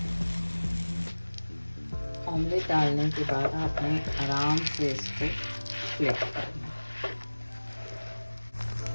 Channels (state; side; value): inverted; both; correlation -1.00